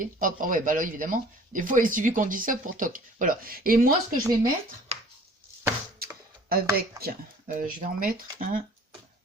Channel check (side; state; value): both; normal; correlation 0.50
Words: hop, oh ouais, bah là, évidemment. Des fois, il suffit qu'on dise ça pour toc. Voilà. Et moi, ce que je vais mettre avec... je vais en mettre un...